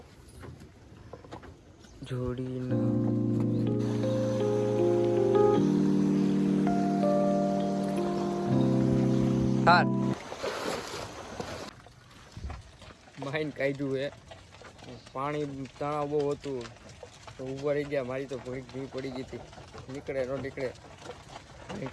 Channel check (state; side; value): identical; both; correlation 1.00